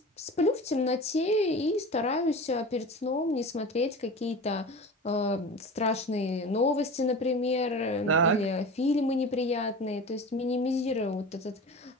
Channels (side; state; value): both; normal; correlation 0.33